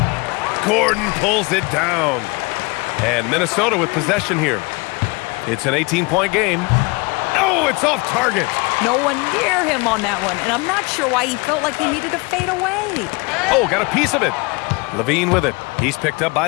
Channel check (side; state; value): right; quieter; 27.6 dB